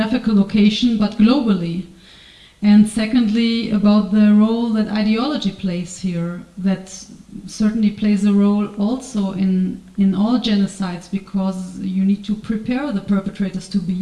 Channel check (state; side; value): identical; both; correlation 1.00